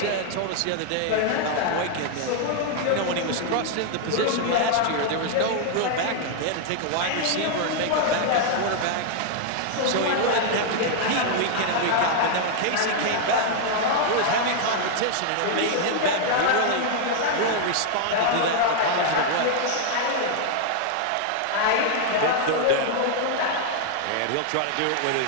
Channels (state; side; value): different; both; correlation 0.00